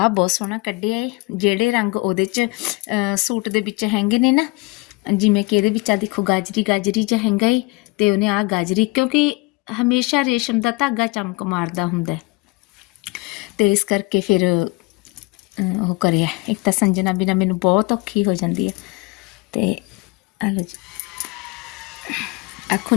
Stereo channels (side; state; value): right; quieter; 25.7 dB